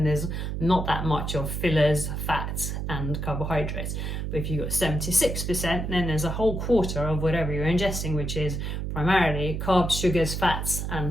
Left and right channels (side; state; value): right; noise; hum, 3 dB below the sound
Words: there's not that much of fillers, fats and carbohydrates. But if you've got 76%, then there's a whole quarter of whatever you're ingesting, which is primarily carbs, sugars, fats